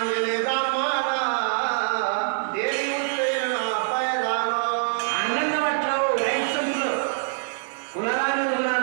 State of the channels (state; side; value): silent; left; digital silence